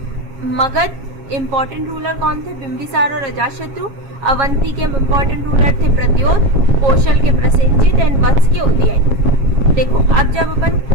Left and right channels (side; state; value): left; late; 7.3 ms